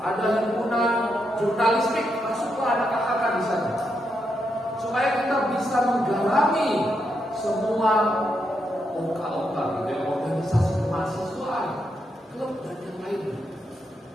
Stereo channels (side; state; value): both; normal; correlation 0.82